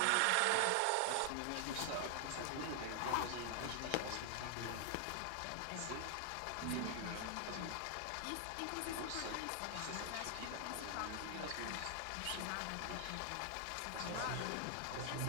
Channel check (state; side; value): different; both; correlation 0.00